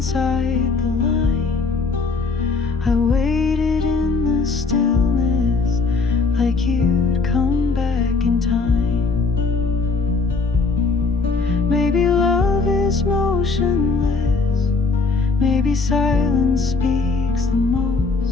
the line. I waited in the stillness like you'd come back in time. Maybe love is motionless, maybe silence speaks the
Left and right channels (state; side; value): quieter; right; 4.2 dB